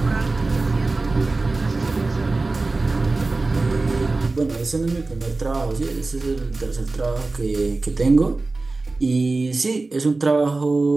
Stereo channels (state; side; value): quieter; left; 3.4 dB